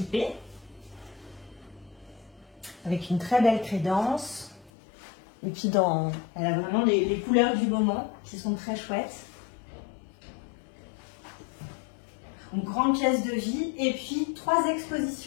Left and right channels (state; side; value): drops out; right; at 4.7 s